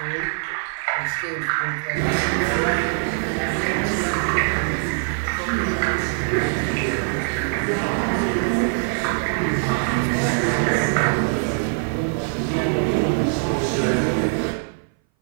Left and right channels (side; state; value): left; silent; 59 dB below the other